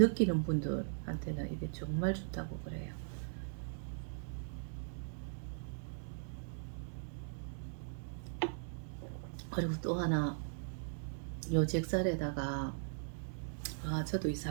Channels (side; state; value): left; silent; 52 dB below the other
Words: 분들한테는 이게 정말 좋다고 그래요. 그리고 또 하나, 요 잭살에다가 저도 이